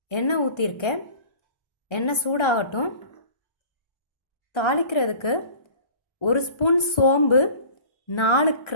எண்ணெய் ஊற்றிருக்கேன். எண்ணெய் சூடாகட்டும். தாளிக்கிறதுக்கு 1 ஸ்பூன் சோம்பு, 4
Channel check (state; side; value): late; right; 1.3 ms